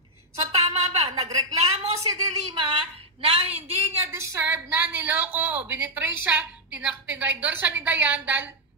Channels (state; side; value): normal; both; correlation -0.01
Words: So tama ba? Nagreklamo si De Lima na hindi niya deserve na niloko, binitray siya, tinraidor siya ni Dayan dahil,